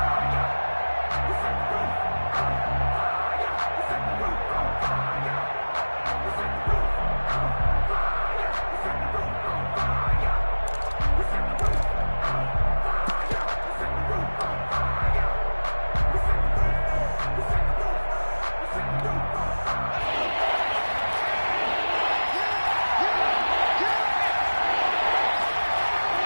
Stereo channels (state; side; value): inverted; both; correlation -1.00